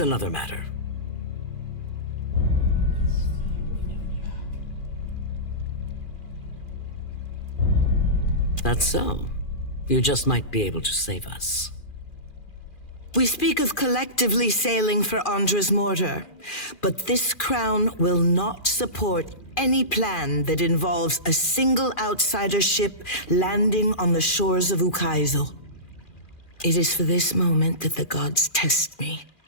matter. That's so. You just might be able to save us. We speak of collectively sailing for Andra's mortar, but this crown will not support any plan that involves a single outsider ship landing on the shores of Ukaizo. It is for this moment that the gods test me.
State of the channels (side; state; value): right; late; 2.4 ms